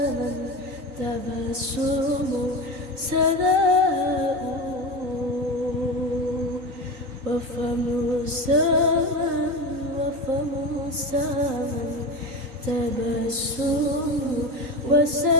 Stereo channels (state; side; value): late; left; 3.9 ms